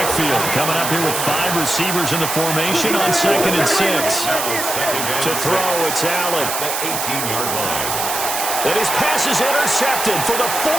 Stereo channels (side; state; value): right; noise; hiss, 3 dB below the sound